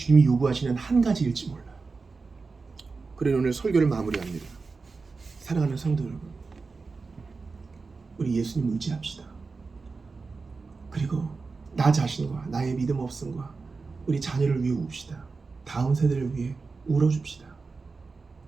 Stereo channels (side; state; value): left; quieter; 4.3 dB